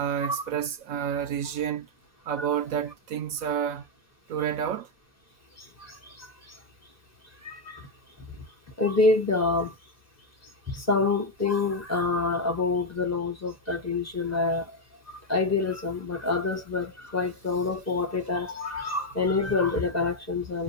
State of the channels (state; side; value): late; left; 2.0 ms